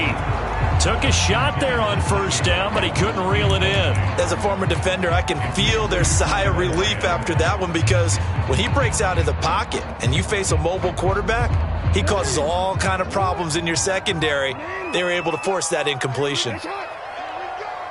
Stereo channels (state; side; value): identical; both; correlation 1.00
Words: Took a shot there on first down, but he couldn't reel it in. As a former defender, I can feel their sigh of relief after that one, because when he breaks out of the pocket and you face a mobile quarterback, he causes all kind of problems in your secondary. They were able to force that incompletion.